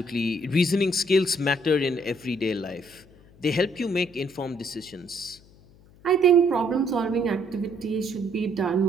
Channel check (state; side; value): noise; left; hum, 26 dB below the sound